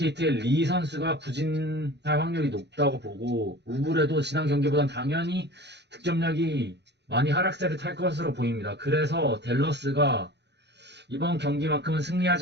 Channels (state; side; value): late; left; 0.50 ms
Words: 리 선수가 부진할 확률이 높다고 보고, 우블에도 지난 경기보단 당연히 득점력이 많이 하락세를 탈 것으로 보입니다. 그래서 댈러스가 이번 경기만큼은